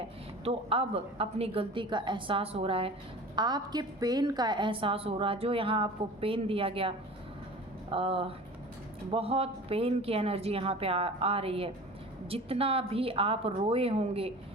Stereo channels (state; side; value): normal; both; correlation 0.39